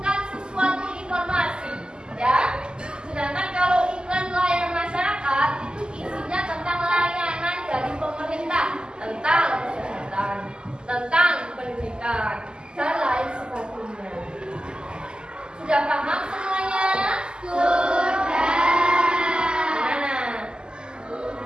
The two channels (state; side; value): late; left; 0.047 ms